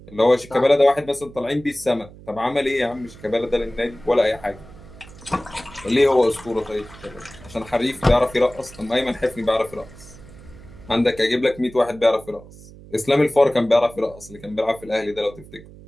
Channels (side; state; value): right; noise; hum, 19 dB below the sound